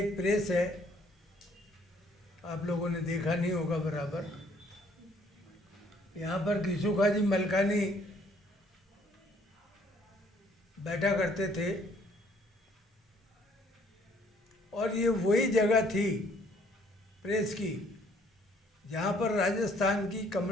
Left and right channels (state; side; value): normal; both; correlation 0.63